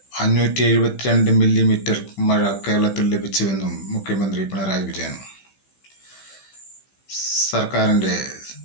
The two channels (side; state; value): right; late; 15 ms